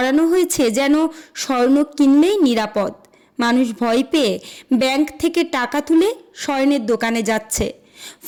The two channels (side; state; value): both; identical; correlation 1.00